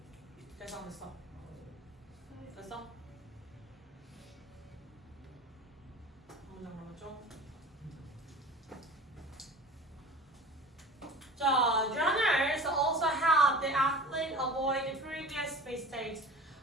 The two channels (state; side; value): normal; both; correlation 0.39